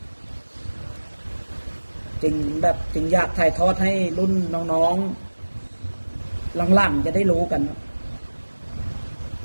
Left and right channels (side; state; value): both; inverted; correlation -1.00